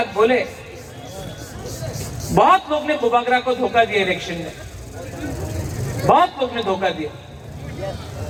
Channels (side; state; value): both; identical; correlation 1.00